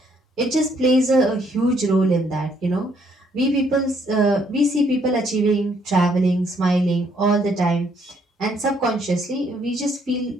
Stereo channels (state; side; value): normal; both; correlation 0.68